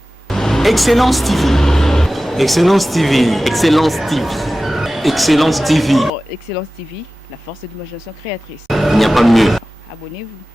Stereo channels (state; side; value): normal; both; correlation 0.96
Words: Excellence TV. Excellence TV. Excellence TV. Excellence TV. Excellence TV, la force de l'imagination créatrice. Il n'y a pas mieux. Abonnez-vous.